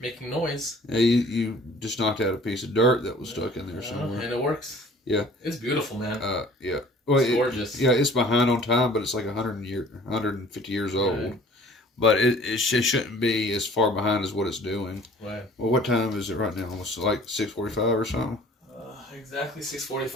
noise. Yeah, you just knocked out a piece of dirt that was stuck in there somewhere. And it works. Yeah. It's beautiful, man. Yeah. Well, it's gorgeous. Yeah, it's behind on time, but it's like 150 years old. Right. But it shouldn't be as far behind as what it's doing. Right. Well, what time is it right now? Almost like 6:45 or something? Exactly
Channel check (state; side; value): normal; both; correlation 0.51